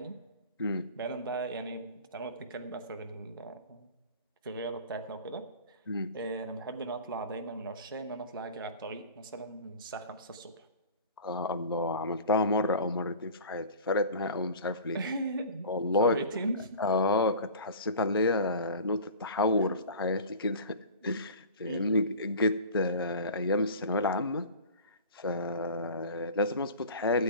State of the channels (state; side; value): inverted; both; correlation -0.39